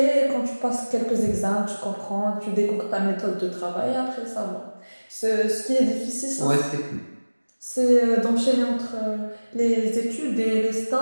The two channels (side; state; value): both; inverted; correlation -1.00